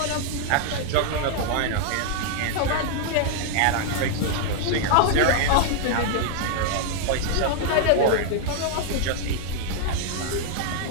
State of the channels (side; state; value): both; different; correlation 0.00